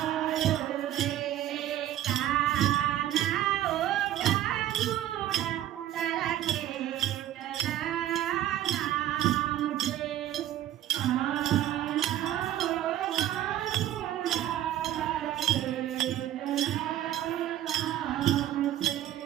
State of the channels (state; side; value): quieter; left; 12.6 dB